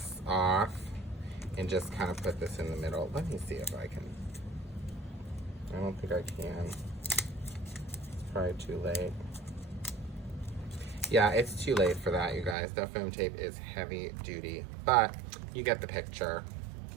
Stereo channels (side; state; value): left; drops out; at 12.6 s